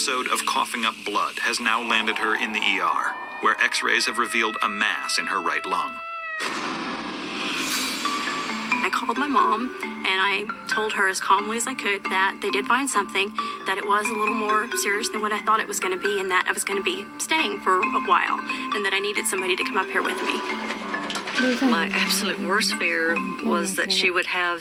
of coughing up blood has now landed her in the ER, where x-rays have revealed a mass in her right lung. I called my mom and I told her as calmly as I could that they did find something, that it was a little more serious than what I thought it was going to be, and that I was going to be staying for a while, and that I needed somebody to come up here with me. My absolute worst fear was that she would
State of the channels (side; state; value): both; identical; correlation 1.00